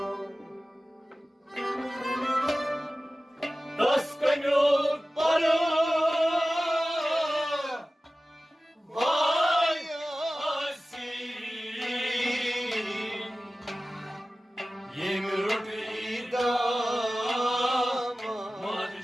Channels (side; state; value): both; normal; correlation 0.96